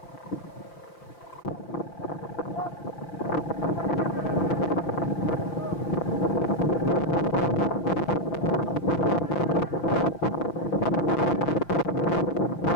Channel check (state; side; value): late; right; 5.5 ms